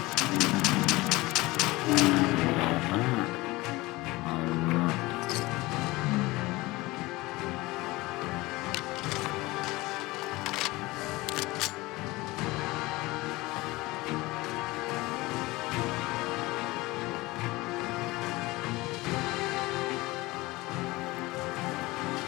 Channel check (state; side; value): quieter; right; 20.9 dB